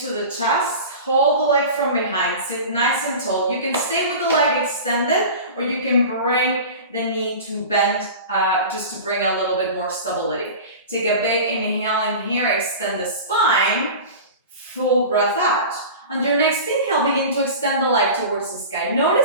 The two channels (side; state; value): both; inverted; correlation -0.33